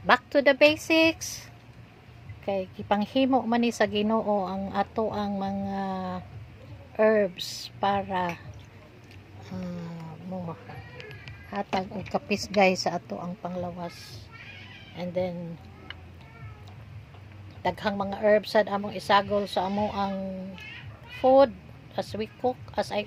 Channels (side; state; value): both; identical; correlation 1.00